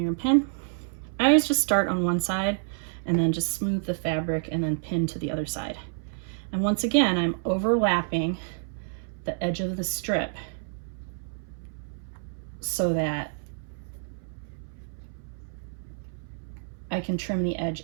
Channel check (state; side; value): silent; left; 59 dB below the other